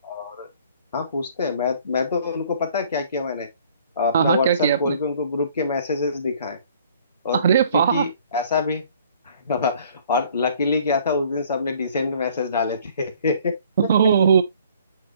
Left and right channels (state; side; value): inverted; both; correlation -0.56